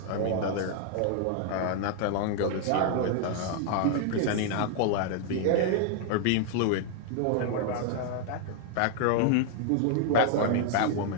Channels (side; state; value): both; different; correlation 0.00